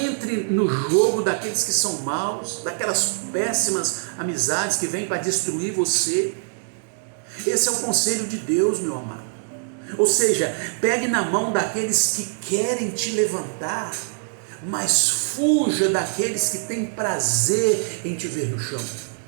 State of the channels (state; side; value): silent; left; 63 dB below the other